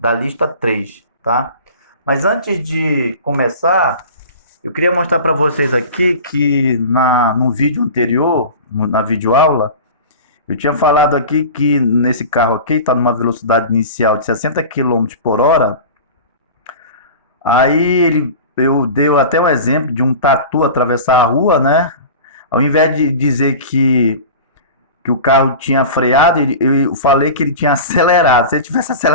lista 3, tá? Mas antes de começar, eu queria mostrar para vocês aqui que no vídeo anterior, na videoaula, eu tinha falado aqui que nesse carro aqui está numa velocidade inicial de 60 quilômetros por hora. Eu dei até um exemplo de um tatu atravessar a rua, né? Ao invés de dizer que o carro tinha freado, eu falei que ele tinha acelerado. Se ele tivesse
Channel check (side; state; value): both; inverted; correlation -0.35